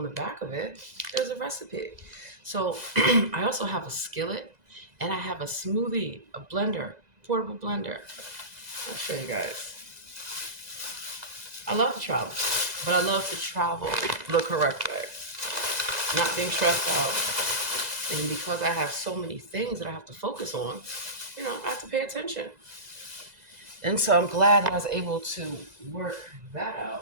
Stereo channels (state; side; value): late; left; 2.0 ms